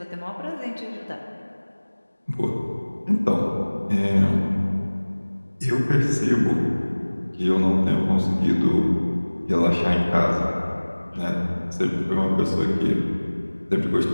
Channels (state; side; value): inverted; both; correlation -1.00